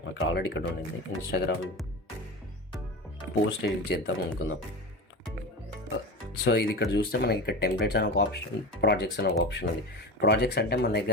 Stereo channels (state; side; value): normal; both; correlation 0.28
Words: నాకు ఆల్రెడీ ఇక్కడ ఉండింది. ఇన్స్టాగ్రామ్ పోస్ట్ ఎడిట్ చేద్దాం అనుకుందాం. సో ఇది ఇక్కడ చూస్తే మనకి ఇక్కడ టెంప్లెట్స్ అని ఒక ఆప్షన్, ప్రాజెక్ట్స్ అని ఒక ఆప్షన్ ఉంది. ప్రాజెక్ట్స్ అంటే మన